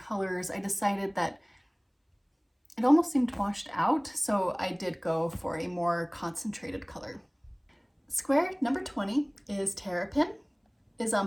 I decided that it almost seemed washed out, so I did go for a more concentrated color. Square number 20 is Terrapin, is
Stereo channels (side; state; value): both; identical; correlation 1.00